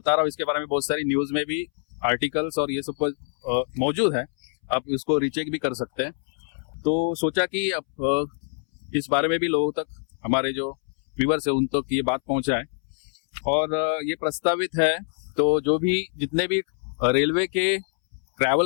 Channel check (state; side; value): silent; right; 62 dB below the other